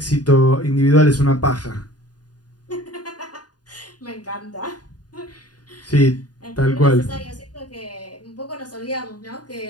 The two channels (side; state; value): right; late; 0.69 ms